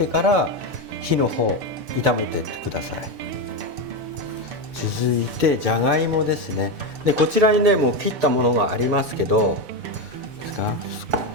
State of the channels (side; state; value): left; late; 6.9 ms